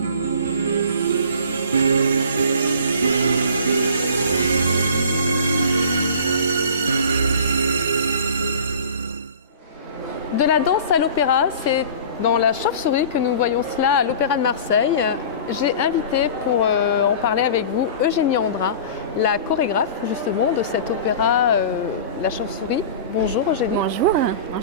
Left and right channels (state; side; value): inverted; both; correlation -0.40